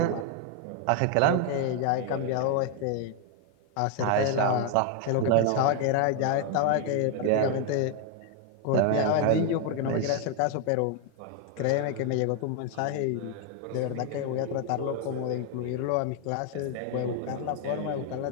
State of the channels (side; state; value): both; different; correlation 0.01